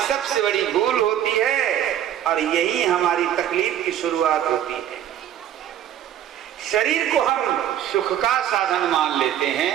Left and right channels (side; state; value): left; quieter; 10.8 dB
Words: सबसे बड़ी भूल होती है, और यही हमारी तकलीफ की शुरुआत होती है। शरीर को हम सुख का साधन मान लेते